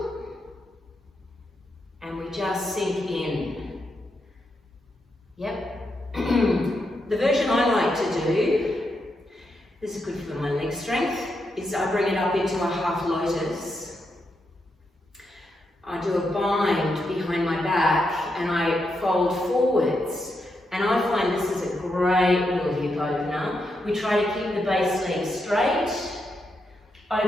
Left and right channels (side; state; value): both; normal; correlation 0.83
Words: and we just sink in. Yep. The version I like to do, this is good for my leg strength, is I bring it up into a half lotus. I do a bind behind my back and I fold forwards. And I find this is a great little hip opener. We try to keep the base leg straight,